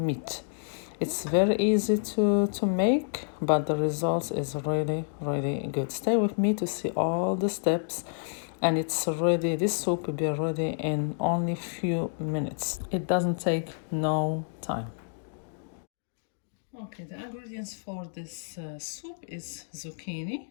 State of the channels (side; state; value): right; silent; digital silence